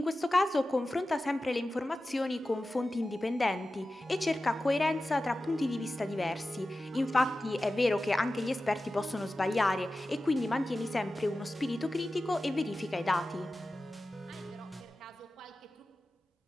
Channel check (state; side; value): normal; both; correlation 0.94